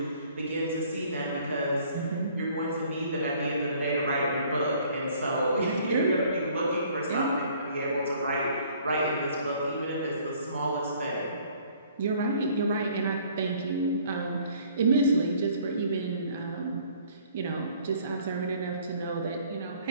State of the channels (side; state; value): both; inverted; correlation -0.57